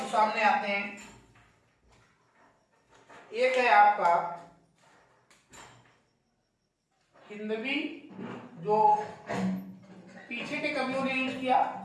सामने आते हैं। एक है आपका हिंदवी, जो पीछे के कवियों ने यूज किया,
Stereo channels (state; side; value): identical; both; correlation 1.00